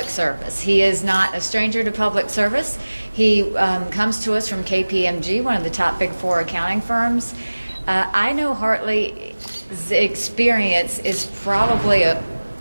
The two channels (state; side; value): inverted; both; correlation -1.00